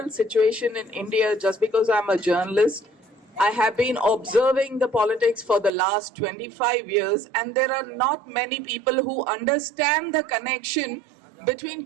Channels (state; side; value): drops out; left; at 5.7 s